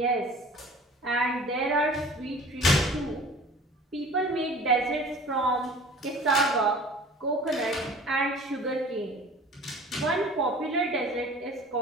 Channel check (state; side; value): normal; both; correlation 0.45